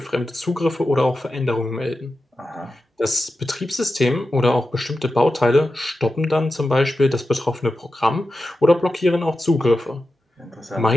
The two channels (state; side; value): normal; both; correlation 0.91